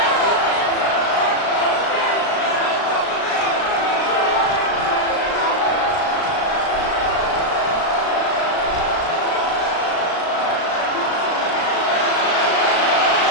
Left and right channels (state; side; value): late; right; 36 ms